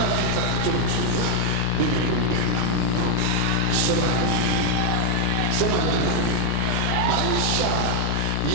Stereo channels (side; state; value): both; different; correlation 0.00